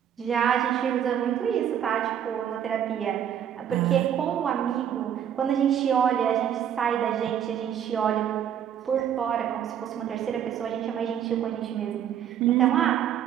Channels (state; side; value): quieter; left; 9.4 dB